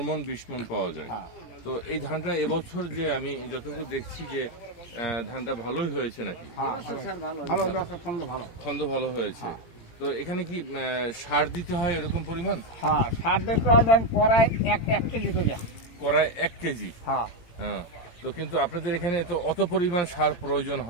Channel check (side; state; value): right; late; 18 ms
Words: মন 20 মন পাওয়া যায়। তো এই ধানটা এবছর যে আমি যতটুকু দেখছি যে ধানটা ভালোই হয়েছে নাকি? ছন্দ ভালো হয়েছে। তো এখানে কি সার দিতে হয় এরকম পরিমাণ? হ্যাঁ, সার দিতে হয় কড়ায় 1 কেজি করে। কড়ায় 1 কেজি? হ্যাঁ। তো কিন্তু আপনাদের এখানে তো অত পরিমাণ সার প্রয়োজন